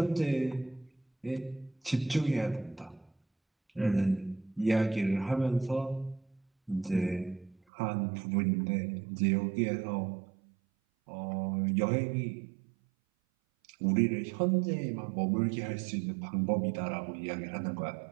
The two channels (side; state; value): left; drops out; at 7.6 s